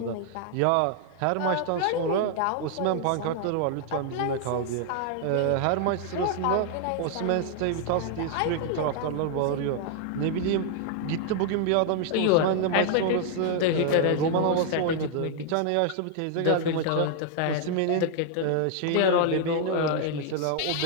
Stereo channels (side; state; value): both; different; correlation 0.00